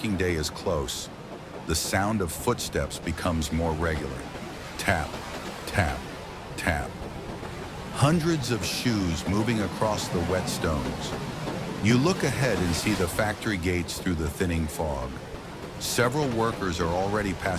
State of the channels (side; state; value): both; identical; correlation 1.00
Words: day is close. The sound of footsteps becomes more regular. Tap, tap, tap. Hundreds of shoes moving across the wet stones. You look ahead and see the factory gates through the thinning fog. Several workers are already